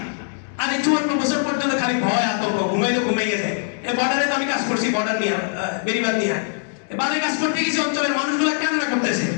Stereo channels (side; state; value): right; silent; 64 dB below the other